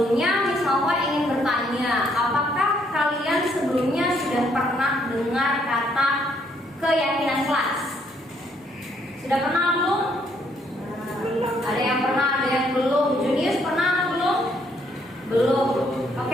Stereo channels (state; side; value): normal; both; correlation 0.69